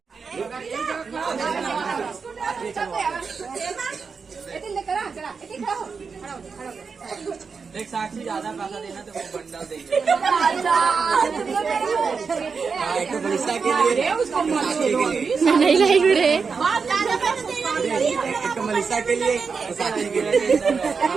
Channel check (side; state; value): left; quieter; 5.3 dB